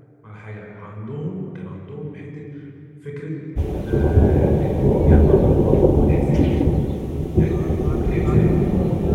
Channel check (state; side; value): identical; both; correlation 1.00